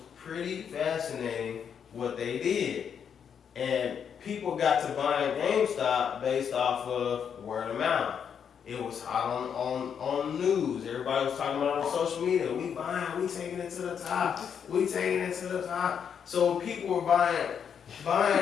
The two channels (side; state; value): right; quieter; 7.6 dB